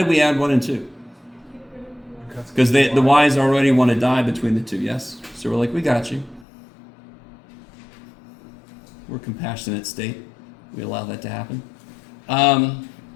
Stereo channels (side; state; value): right; drops out; at 6.5 s